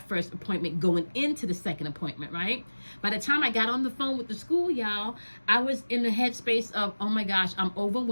first appointment going into the second appointment, right? By the time I got on the phone with the school, y'all, I was in the headspace of, oh my gosh, I'm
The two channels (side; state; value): both; inverted; correlation -1.00